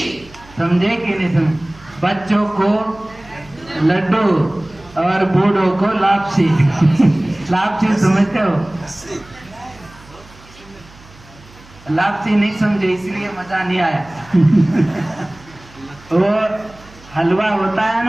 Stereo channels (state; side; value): noise; right; hum, 23 dB below the sound